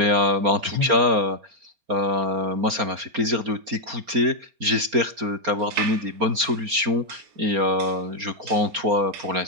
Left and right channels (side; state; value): left; late; 4.3 ms